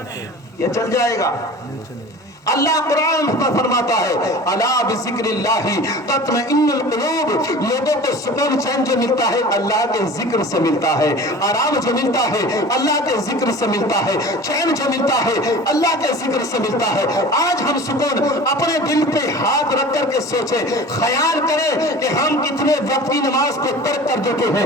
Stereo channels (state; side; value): normal; both; correlation 0.39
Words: ये चल जाएगा। अल्लाह कुरान में फरमाता है, अला बिज़िक्रिल्लाहि तत्मइन्नुल कुलूब, लोगों को सुकून चैन जो मिलता है अल्लाह के जिक्र से मिलता है, आराम जो मिलता है अल्लाह के जिक्र से मिलता है, चैन जो मिलता है अल्लाह के जिक्र से मिलता है। आज हम सुकून अपने दिल पे हाथ रख करके सोचे, ख्याल करें कि हम कितने वक्त की नमाज को तर्क कर देते